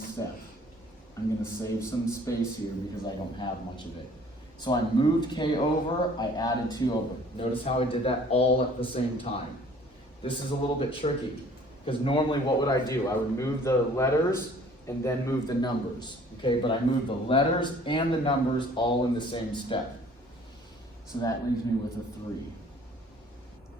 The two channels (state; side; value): normal; both; correlation 0.54